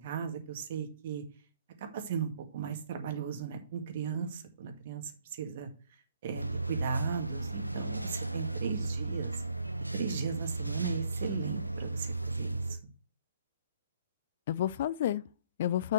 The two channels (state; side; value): inverted; both; correlation -0.65